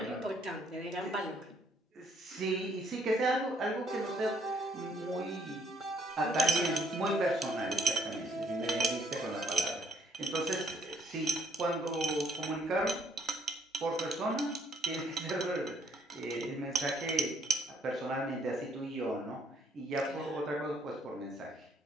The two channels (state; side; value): normal; both; correlation 0.66